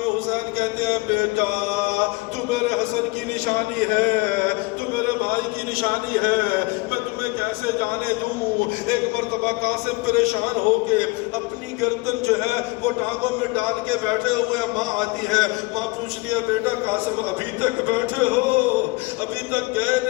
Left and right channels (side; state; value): right; quieter; 24.7 dB